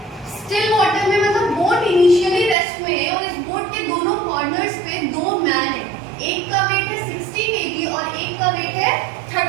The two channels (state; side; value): drops out; left; at 2.6 s